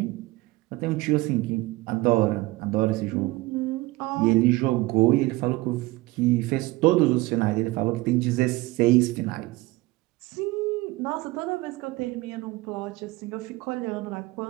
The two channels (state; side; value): quieter; left; 20.6 dB